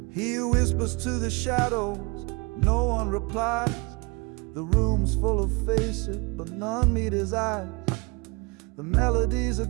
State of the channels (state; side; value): quieter; left; 28.4 dB